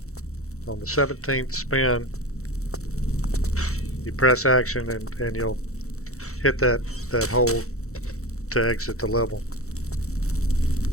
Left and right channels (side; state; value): right; late; 0.64 ms